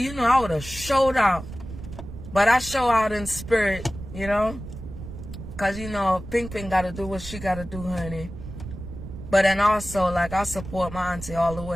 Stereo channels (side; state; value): right; noise; rumble, 11 dB below the sound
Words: you know, I would have showed out. But I show out in spirit, you know. Because, you know, Ping Ping got to do what she got to do, honey. But then also, like, I support my auntie all the